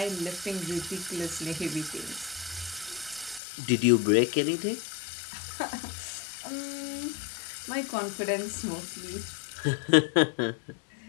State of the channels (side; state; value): right; drops out; at 3.4 s